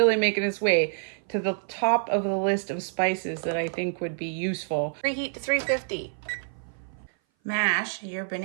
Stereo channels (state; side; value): silent; left; 57 dB below the other